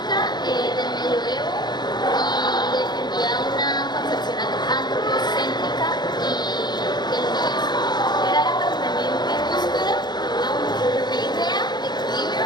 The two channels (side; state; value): right; late; 0.21 ms